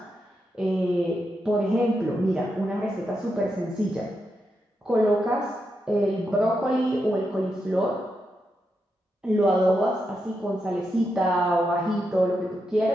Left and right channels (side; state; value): both; normal; correlation 0.85